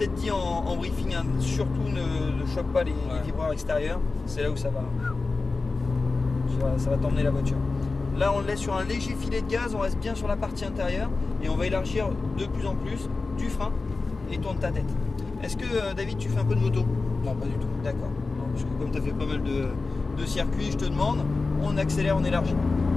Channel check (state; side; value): quieter; right; 3.8 dB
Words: dit en briefing, hein, surtout ne choque pas les vibreurs extérieurs. C'est là où ça va t'emmener la voiture. Là on le laisse sur un léger filet de gaz, on reste bien sur la partie intérieure et on va élargir de plus en plus du frein et tourne ta tête. Est-ce que David, tu fais un peu de moto? Non, pas du tout. D'accord. Parce que comme tu as fait pas mal de circuits, je te demande, on accélère, on élargit.